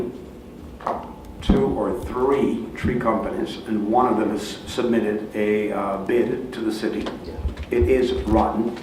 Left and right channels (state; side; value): identical; both; correlation 1.00